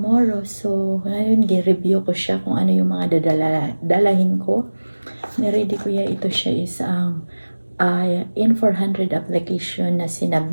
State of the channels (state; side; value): inverted; both; correlation -1.00